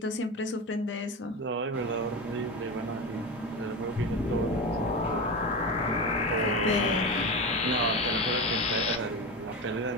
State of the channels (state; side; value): normal; both; correlation 0.22